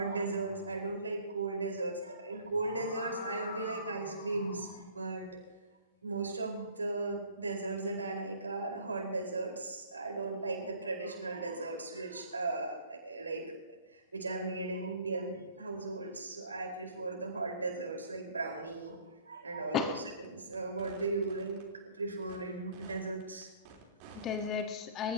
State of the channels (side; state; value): both; inverted; correlation -0.52